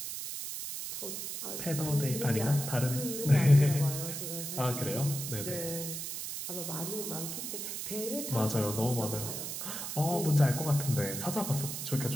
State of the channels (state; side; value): noise; right; hiss, 5 dB below the sound